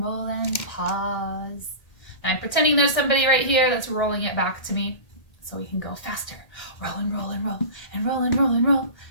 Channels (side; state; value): right; late; 1.8 ms